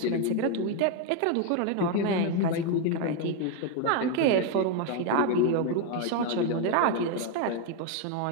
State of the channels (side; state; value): both; different; correlation 0.01